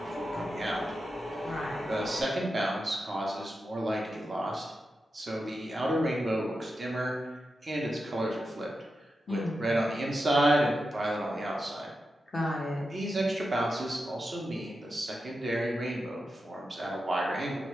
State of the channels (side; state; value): both; normal; correlation 0.89